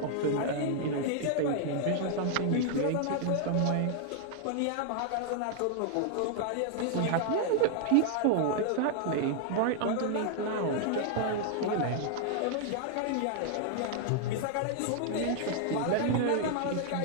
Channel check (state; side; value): different; both; correlation 0.00